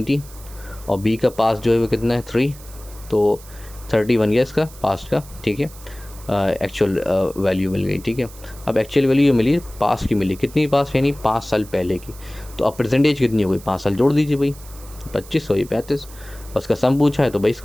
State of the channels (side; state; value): right; noise; hiss, 20 dB below the sound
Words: और बी का पास्ट जो है वो कितना है 3, तो 30 बन गया इसका पास्ट का, ठीक है। एक्चुअल वैल्यू मिल गई, ठीक है। अब एक्चुअल वैल्यू ये मिली पास्ट की, मिली कितनी पास्ट, यानी 5 साल पहले की। तो अब प्रेजेंट एज कितनी हो गई, 5 साल जोड़ दीजिए भाई, 25 हो, ये 35, उसका सम पूछा है तो भाई